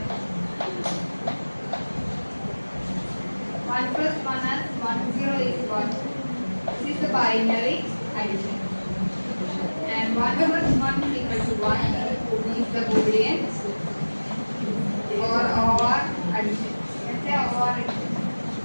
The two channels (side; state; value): both; inverted; correlation -1.00